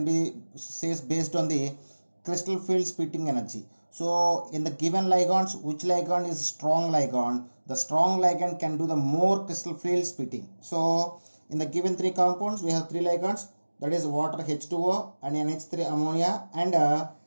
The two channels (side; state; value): both; inverted; correlation -1.00